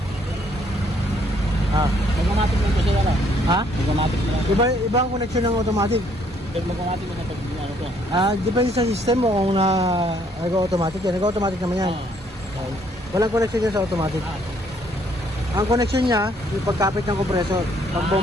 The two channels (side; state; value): both; normal; correlation 0.66